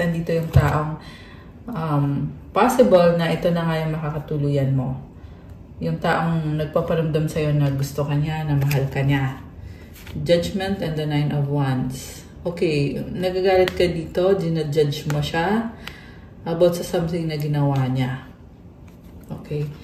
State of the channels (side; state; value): both; identical; correlation 1.00